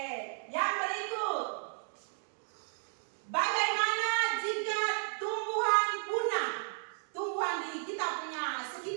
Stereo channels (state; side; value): silent; left; 55 dB below the other